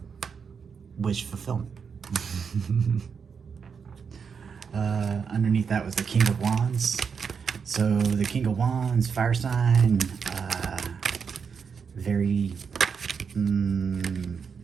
Wish fulfillment. Underneath that was the King of Wands. So the King of Wands, fire sign, very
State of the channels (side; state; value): left; quieter; 6.2 dB